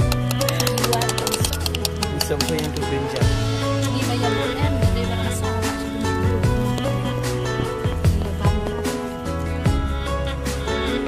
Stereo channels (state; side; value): identical; both; correlation 1.00